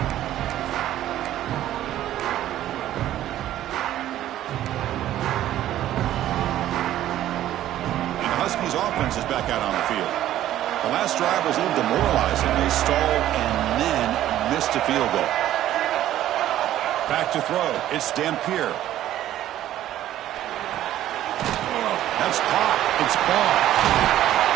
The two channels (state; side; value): quieter; left; 12.9 dB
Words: Huskies offense is back out on the field. The last drive was a little demoralizing. They stalled and then missed a field goal. Back to throw. It's Dampier. That's caught. It's ball.